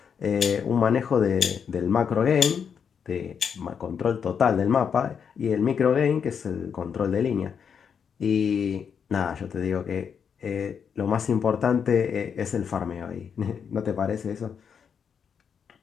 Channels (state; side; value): quieter; right; 7.1 dB